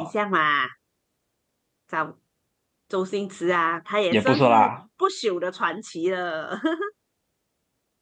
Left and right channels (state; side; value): identical; both; correlation 1.00